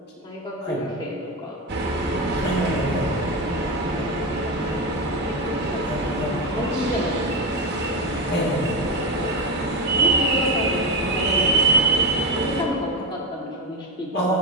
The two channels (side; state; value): both; normal; correlation 0.12